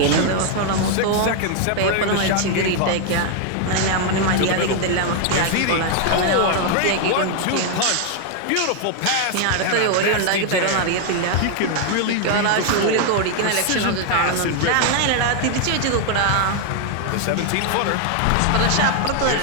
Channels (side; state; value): both; different; correlation 0.00